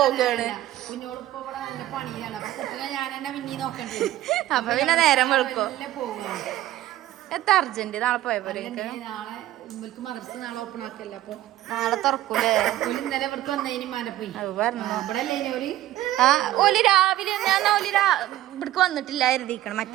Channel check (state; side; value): quieter; left; 14.5 dB